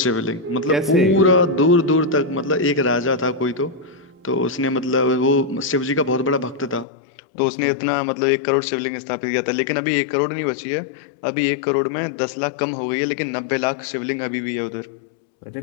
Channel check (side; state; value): right; drops out; at 6.9 s